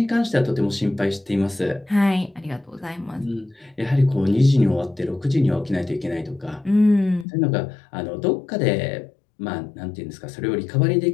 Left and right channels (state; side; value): drops out; right; at 7.2 s